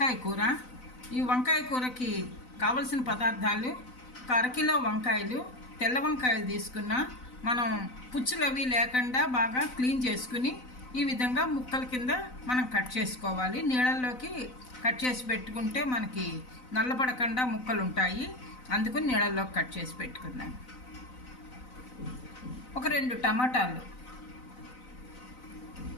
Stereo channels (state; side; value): late; right; 4.0 ms